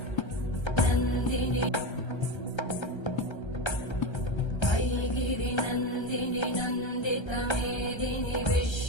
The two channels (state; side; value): late; right; 1.3 ms